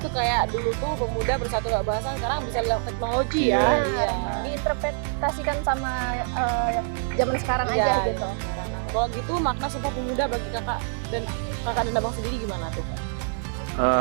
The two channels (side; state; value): left; silent; 61 dB below the other